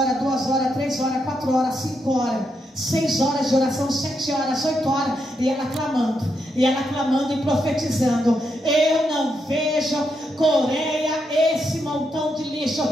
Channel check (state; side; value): normal; both; correlation 0.81